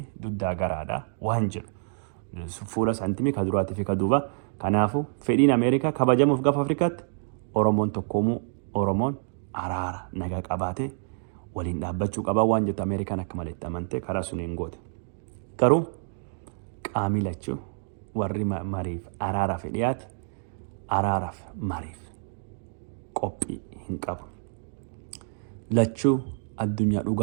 duddaa garaadha waan jedhu. Fuula saantimii ka duraatii fi ka duuba. Kanaafuu fedhiin Ameerikaa kabajamuuf gaafa Afrikaatti Oromoon tokkoomuu Oromoon araara nagaa qabaatee waliin dhaabbachuu qaba waan jettu Ameerikaan akka malee amante karaa suniin goote. Garuu qaamii lachuu warri mariif araaraaf dhiyaate araaraaf mariif qophii hin qabu. Lachuu addunyaa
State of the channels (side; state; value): left; silent; digital silence